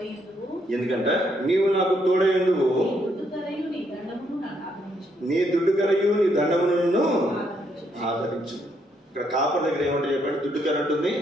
ఎందుకంటే నీవు నాకు తోడైందువు, నీ దుడ్డుకరయు నీ దండమును ఆదరించు. ఇక్కడ కాపర్ దగ్గర ఏమంటే చెప్పండి, దుడ్డుకర ఉంటుంది,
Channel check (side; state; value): both; normal; correlation 0.74